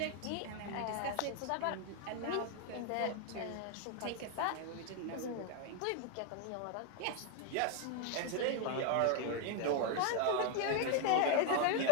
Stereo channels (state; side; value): different; both; correlation 0.00